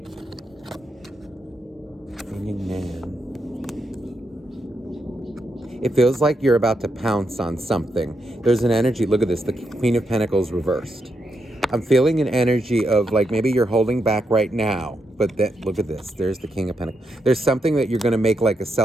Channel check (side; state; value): both; normal; correlation 0.82